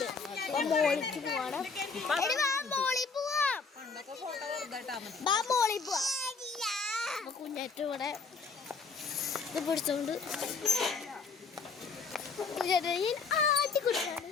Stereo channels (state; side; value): quieter; right; 4.8 dB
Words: മോളിക്ക് പോവാണ്. കുഞ്ഞാറ്റ ഇവിടെ ഇത് പിടിച്ചോണ്ട് ആദ്യം കുടിച്ചാണ്